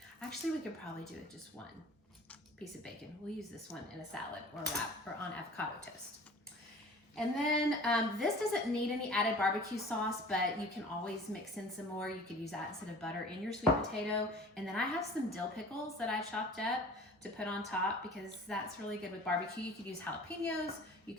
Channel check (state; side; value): normal; both; correlation 0.44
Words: Actually, we could probably do it just one piece of bacon. We'll use this one in a salad or a wrap or on avocado toast. And then this doesn't need any added barbecue sauce, but you can always mix in some more. You could use that instead of butter in your sweet potato. And then I have some dill pickles that I chopped up to put on top because that's really good with barbecue. You could use jalapenos, you